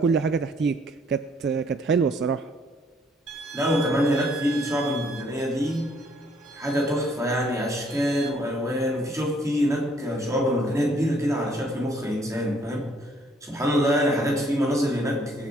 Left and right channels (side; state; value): both; normal; correlation 0.64